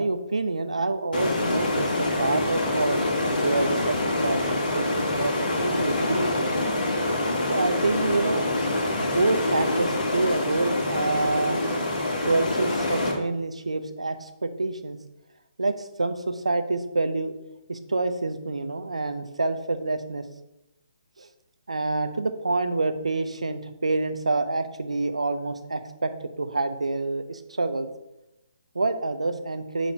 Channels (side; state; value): both; inverted; correlation -0.80